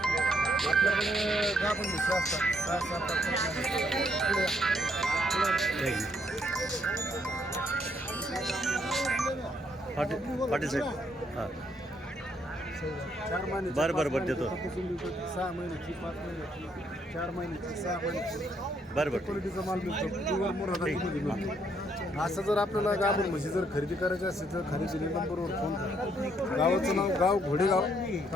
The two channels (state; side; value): normal; both; correlation 0.71